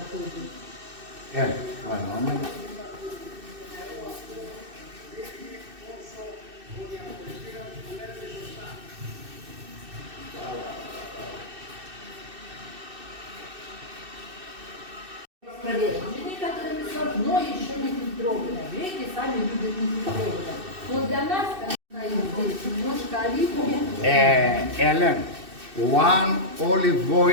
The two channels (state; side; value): late; left; 2.6 ms